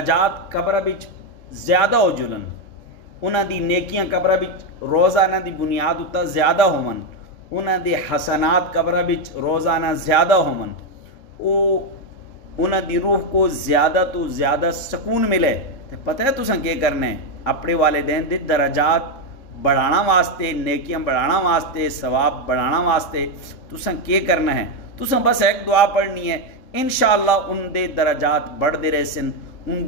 कब्र विच ज़्यादा हो जुलन, उन्हां दी नेकियां कब्र विच रोज़ाना दी बुनियाद उत्ता ज़्यादा होवन, उन्हां दे हसनात कब्र विच रोज़ाना ज़्यादा होवन, उन्हां दी रूह को ज़्यादा तो ज़्यादा सुकून मिले, तो पता है तुसां क्या करना है? अपने वालिदैन दे दराजात बढ़ाना वास्ते, नेकियां बढ़ाना वास्ते, सवाब बढ़ाना वास्ते तुसां क्या करना है? तुसां बस एक दुआ पढ़नी है, इंशाअल्लाह उनके दराजात बढ़ते रहसन,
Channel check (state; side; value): late; right; 3.6 ms